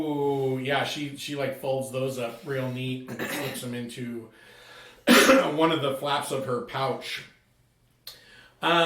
Yeah, she like folds those up real neat and slips them into one of the flaps of her pouch.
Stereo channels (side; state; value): both; identical; correlation 1.00